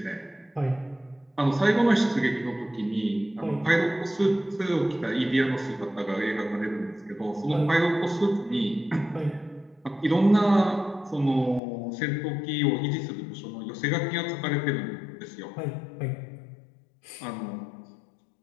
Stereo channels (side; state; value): right; drops out; at 11.6 s